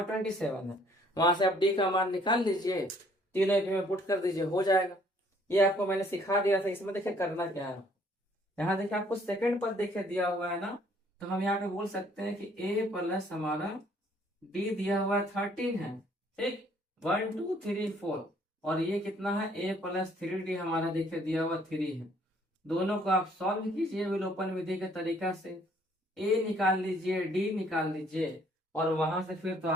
27 है। वहां से आप डी का मान निकाल लीजिए, तीनों एक में पुट कर दीजिए, हो जाएगा। ये आपको मैंने सिखा दिया था, इसमें देखिए करना क्या है। यहाँ देखिए आपको सेकंड पद देखिए दिया हुआ है ना, तो हम यहाँ पे बोल सकते हैं कि ए प्लस हमारा डी दिया हुआ 13 है। ठीक, 1 2 3 4, और ये कितना है, ए प्लस 3d हमारा देखिए दिया हुआ 3 है। दोनों को आप सॉल्व कीजिए विलोपन विधि के तरीका से। ए निकाल लीजिए, डी निकाल लीजिए, और वहां से फिर तो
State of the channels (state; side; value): normal; both; correlation 0.62